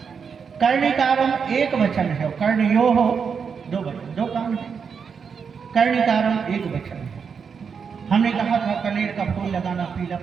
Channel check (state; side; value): quieter; left; 6.2 dB